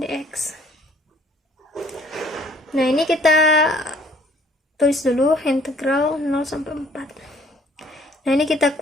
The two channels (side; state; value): both; normal; correlation 0.59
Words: Nah, ini kita tulis dulu integral 0 sampai 4. Nah, ini kita